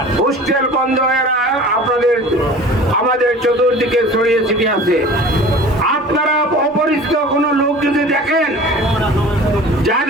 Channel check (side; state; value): both; normal; correlation 0.42